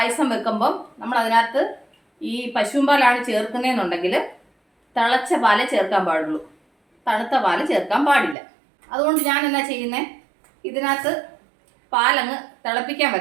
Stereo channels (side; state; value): left; drops out; at 8.3 s